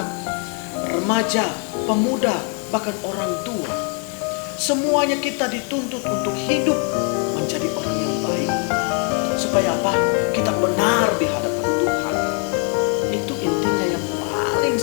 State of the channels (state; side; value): quieter; right; 36.8 dB